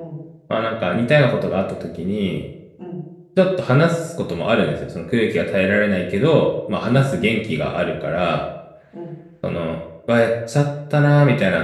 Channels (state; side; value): identical; both; correlation 1.00